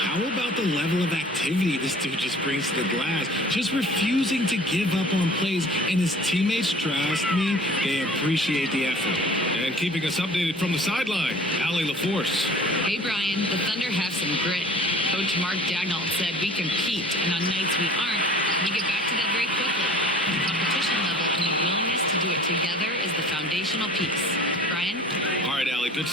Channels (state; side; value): normal; both; correlation 0.46